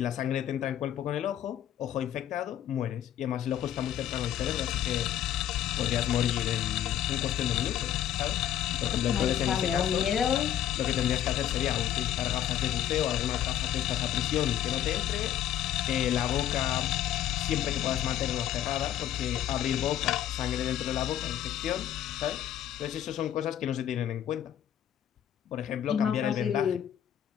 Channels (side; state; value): right; quieter; 11.1 dB